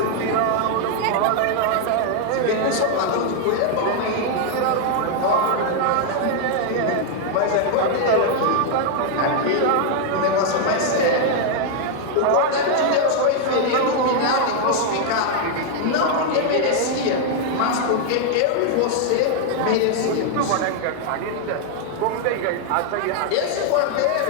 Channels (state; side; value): different; both; correlation 0.00